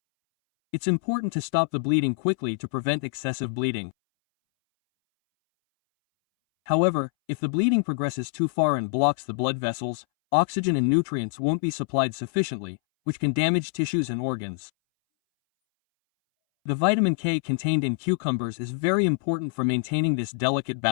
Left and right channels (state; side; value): silent; right; 61 dB below the other